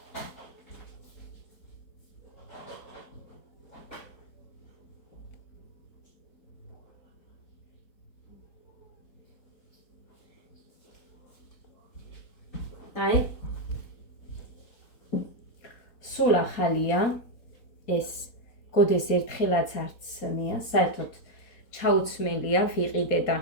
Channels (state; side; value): late; right; 4.2 ms